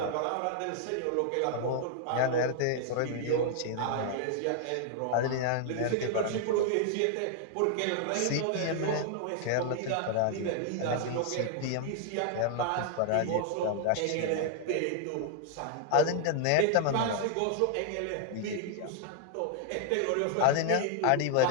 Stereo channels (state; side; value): different; both; correlation 0.00